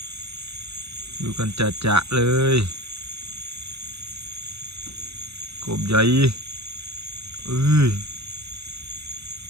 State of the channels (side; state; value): left; late; 0.79 ms